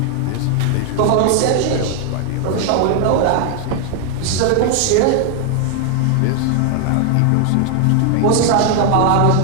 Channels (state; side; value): different; both; correlation 0.00